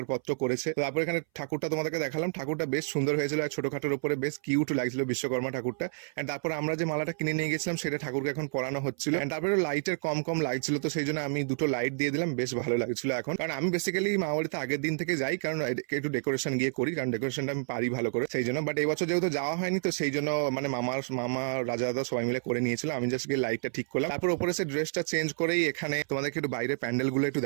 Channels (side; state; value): left; silent; 58 dB below the other